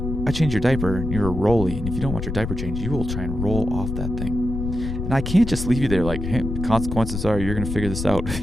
I changed your diaper and you're a rolly. And if you don't want your diaper changed, you will try and roll off that thing. And I can't just leave you there like, hey, the consequences are you're going to figure this out. If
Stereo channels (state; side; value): noise; left; rumble, 5 dB below the sound